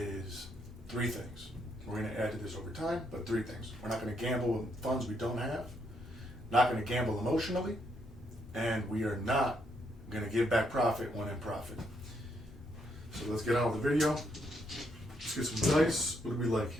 three things. We're going to add to this over time, but three things. We're not going to gamble with funds we don't have, not going to gamble emotionally, and we are not going to give back profit when in profit. So let's get on with the video. Let's get some dice. What do we like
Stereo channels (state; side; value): normal; both; correlation 0.75